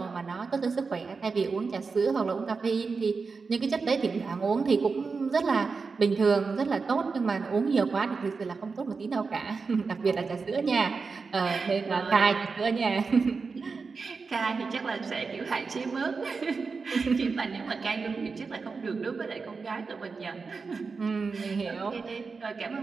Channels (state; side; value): quieter; left; 4.7 dB